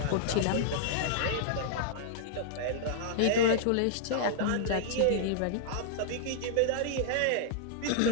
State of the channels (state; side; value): different; both; correlation -0.01